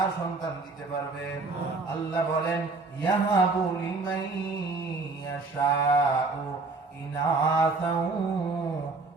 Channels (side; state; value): left; quieter; 3.8 dB